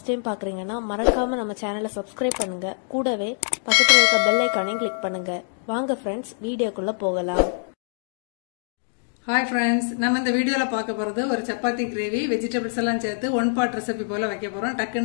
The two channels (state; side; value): silent; right; digital silence